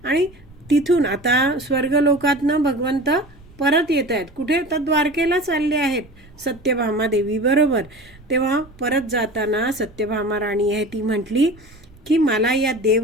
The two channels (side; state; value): right; noise; rumble, 24 dB below the sound